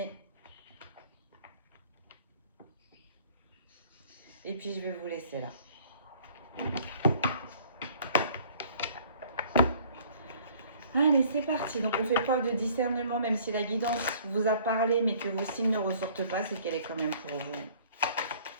Et puis je vais vous laisser là. Allez, c'est parti. Donc, on fait preuve de discernement, même si la guidance vous a parlé, mais que vos signes ne ressortent pas, c'est qu'elle est quand même pour vous.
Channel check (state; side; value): inverted; both; correlation -0.55